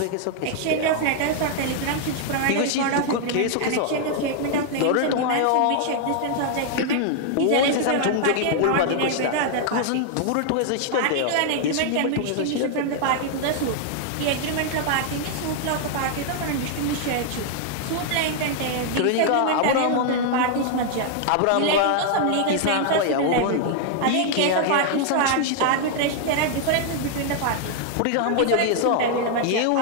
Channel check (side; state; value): both; different; correlation 0.00